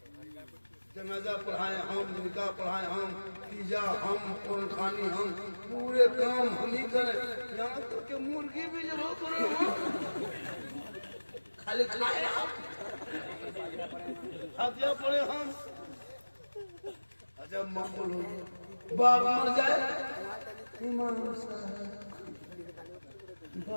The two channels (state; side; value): inverted; both; correlation -1.00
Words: जनाजा पढ़ाए हम, निकाह पढ़ाए हम, तीजा हम, कुरान खानी हम, पूरे काम हम ही करें। यहाँ तक के मुर्गी भी जब हो करें हम खाली खाए हम, हाथिया पड़े हम। जब मामूल हो बाप मर जाए, इमाम साहब